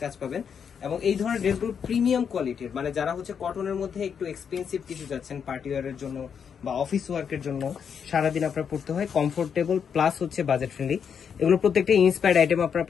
কাজ পাবেন। এবং এই ধরনের ড্রেসগুলো প্রিমিয়াম কোয়ালিটির, মানে যারা হচ্ছে কটনের মধ্যে একটু এক্সপেন্সিভ কিছু যাচ্ছেন পার্টি ওয়ারের জন্য বা অফিস ওয়ার্কের জন্য, সারাদিন আপনার পড়তে হয়, কমফোর্টেবল প্লাস হচ্ছে বাজেট ফ্রেন্ডলি। এগুলো প্রত্যেকটা ইন্সপায়ার্ড আইটেম আপনারা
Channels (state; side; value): quieter; right; 7.2 dB